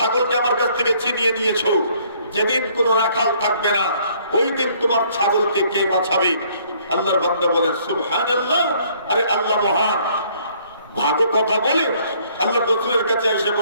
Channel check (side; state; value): both; inverted; correlation -0.62